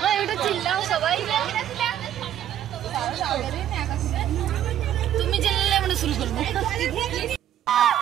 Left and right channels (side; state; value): left; quieter; 11.1 dB